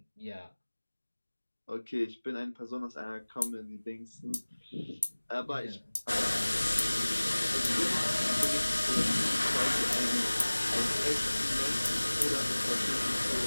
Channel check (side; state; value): both; inverted; correlation -1.00